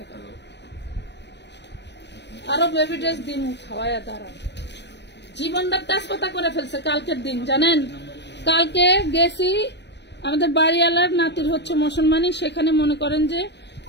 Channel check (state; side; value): late; right; 0.50 ms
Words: না। আরো বেবি ড্রেস দিয়ে মুখ খাওয়াইয়া দাঁড়ান, জীবনটা তেজপাতা করে ফেলছে। কালকের দিন জানেন, কালকে গেছি আমাদের বাড়িওয়ালার নাতির হচ্ছে মুসলমানি, সেখানে মনে করেন যে